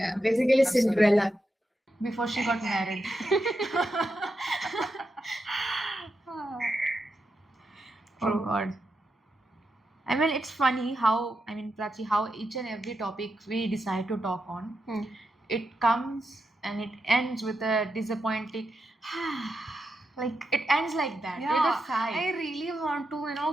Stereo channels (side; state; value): both; normal; correlation 0.86